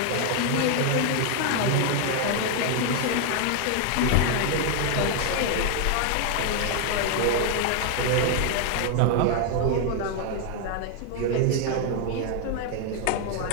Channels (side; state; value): both; different; correlation 0.00